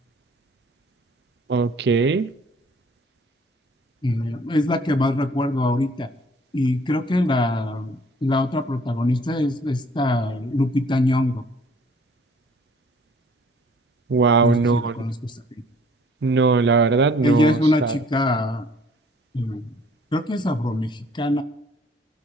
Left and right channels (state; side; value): normal; both; correlation 0.56